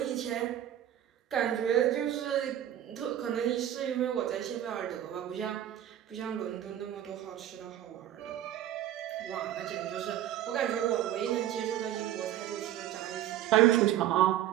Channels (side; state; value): left; quieter; 11.8 dB